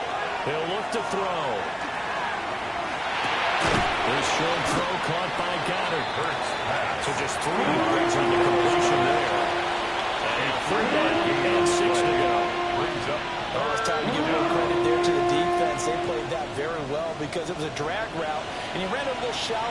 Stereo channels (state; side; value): identical; both; correlation 1.00